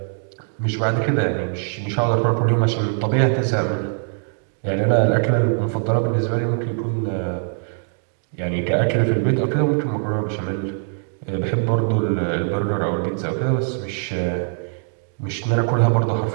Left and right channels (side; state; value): left; silent; digital silence